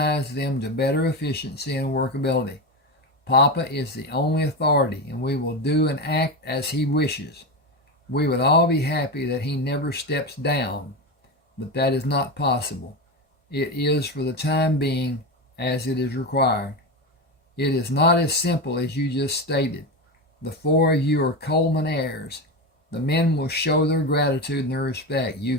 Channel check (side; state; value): both; normal; correlation 0.18